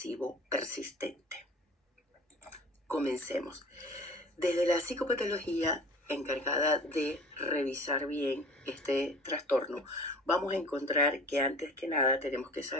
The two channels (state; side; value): normal; both; correlation 0.43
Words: persistente. Comencemos. Desde la psicopatología encargada de revisar bien este trastorno, vamos a encontrar que antes que nada tenemos que